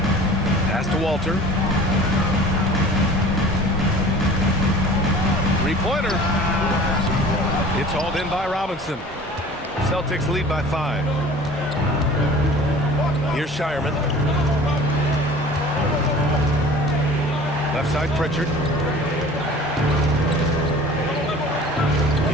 Pass to Walter. Three-pointer. It's hauled in by Robinson. Celtics lead by 5. Here's Shireman. Left side, Pritchard.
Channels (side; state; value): both; normal; correlation 0.44